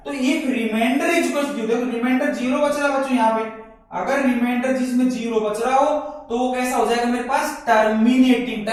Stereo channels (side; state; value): both; identical; correlation 1.00